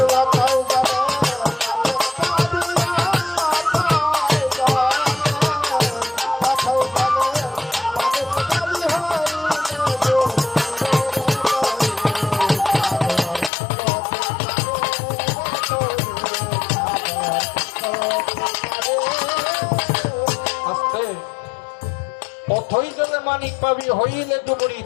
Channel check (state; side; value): drops out; right; at 13.5 s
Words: ধৈর্যলে মানিক পাবি, হইলে ডুবুরি